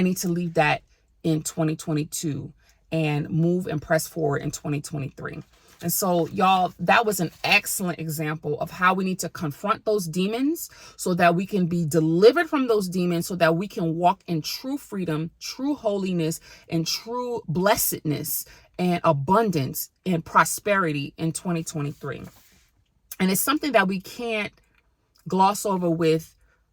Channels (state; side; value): identical; both; correlation 1.00